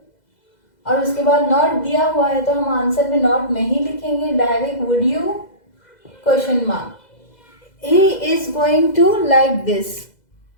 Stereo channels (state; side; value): late; right; 2.0 ms